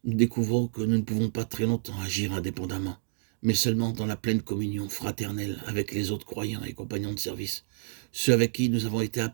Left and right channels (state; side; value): silent; left; digital silence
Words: nous découvrons que nous ne pouvons pas très longtemps agir indépendamment, mais seulement dans la pleine communion fraternelle avec les autres croyants et compagnons de service, ceux avec qui nous avons été